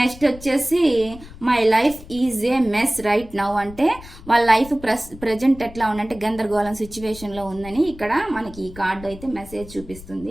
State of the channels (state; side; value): noise; left; rumble, 17 dB below the sound